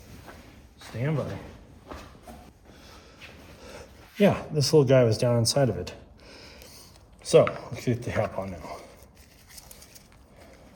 Stand by. Yeah, this little guy was down inside of it. So, let's get the cap on now.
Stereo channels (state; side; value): identical; both; correlation 1.00